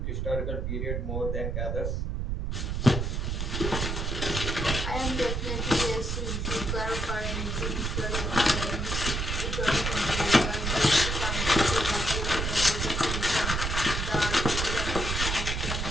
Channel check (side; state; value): right; noise; rumble, 1 dB below the sound